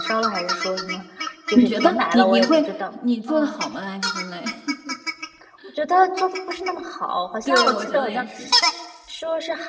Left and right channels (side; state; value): both; identical; correlation 1.00